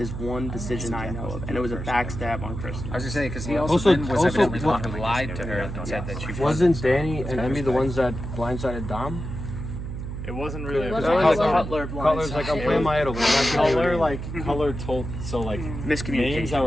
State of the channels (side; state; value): right; noise; hum, 7 dB below the sound